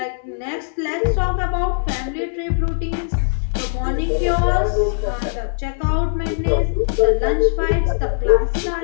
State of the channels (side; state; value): right; silent; digital silence